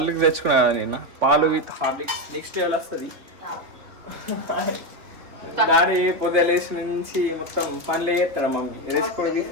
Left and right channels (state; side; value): late; left; 3.7 ms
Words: తెచ్చుకున్నా కదా నిన్న, పాలు విత్ హార్లిక్స్. నెక్స్ట్ లెవెల్ వస్తుంది. డాడీ పొద్దున లేచి నుంచి మొత్తం పనులు చేస్తాడు, మమ్మీ వేసుకొని